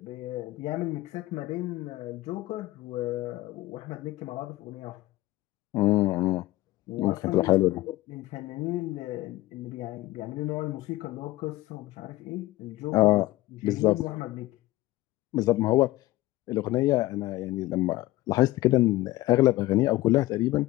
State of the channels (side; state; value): right; quieter; 17.7 dB